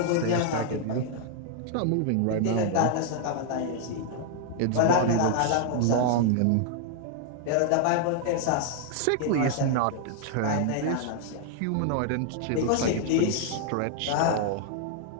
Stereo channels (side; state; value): both; different; correlation 0.00